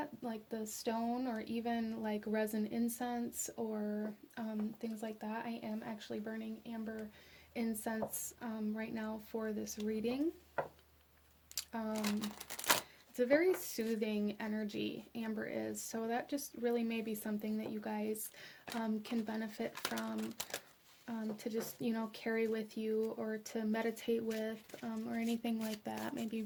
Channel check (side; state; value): both; identical; correlation 1.00